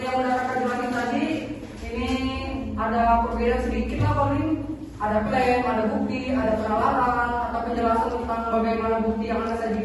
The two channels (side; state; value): both; identical; correlation 1.00